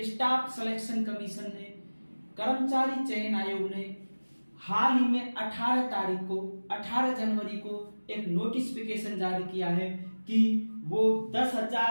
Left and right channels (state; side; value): inverted; both; correlation -1.00